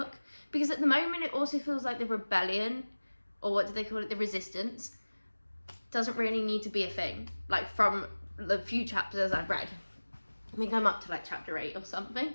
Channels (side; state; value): both; inverted; correlation -1.00